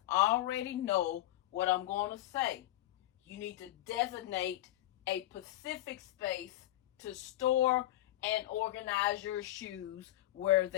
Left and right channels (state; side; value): quieter; right; 15.3 dB